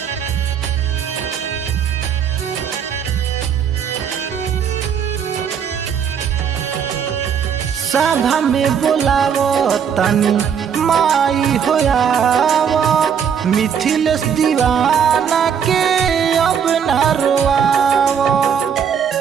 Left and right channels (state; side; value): quieter; left; 7.6 dB